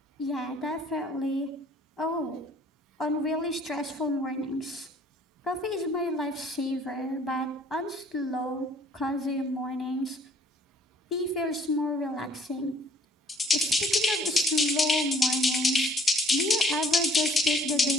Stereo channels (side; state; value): both; normal; correlation 0.59